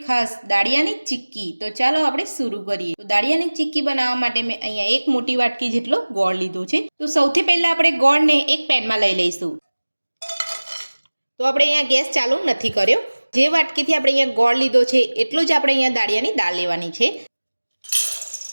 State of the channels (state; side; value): inverted; both; correlation -1.00